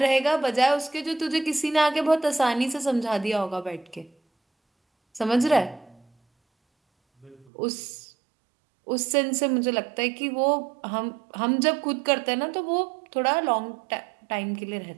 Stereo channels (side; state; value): left; drops out; at 7.5 s